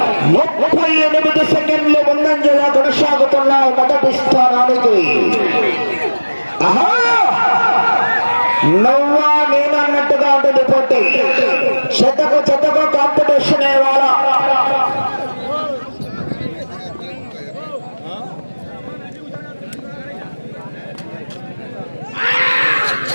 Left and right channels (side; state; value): both; inverted; correlation -1.00